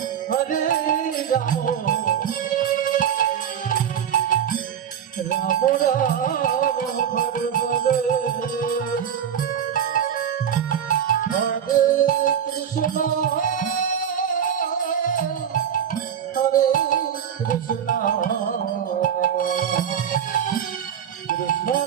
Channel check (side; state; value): left; quieter; 8.6 dB